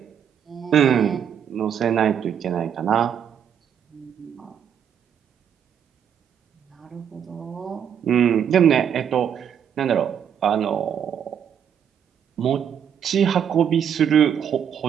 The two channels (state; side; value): quieter; left; 8.5 dB